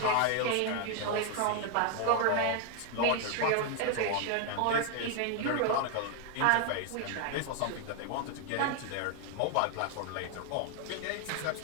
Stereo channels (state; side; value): different; both; correlation 0.01